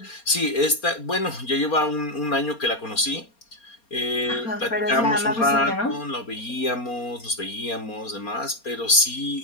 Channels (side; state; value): right; late; 4.3 ms